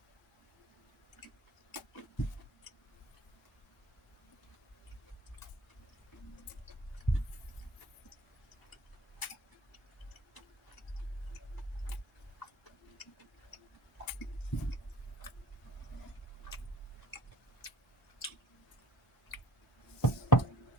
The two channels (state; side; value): normal; both; correlation 0.50